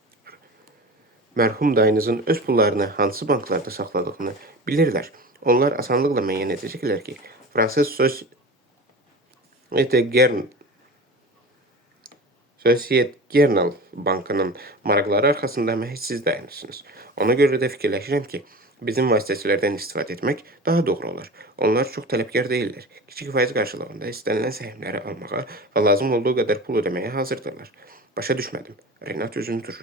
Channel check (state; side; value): normal; both; correlation 0.33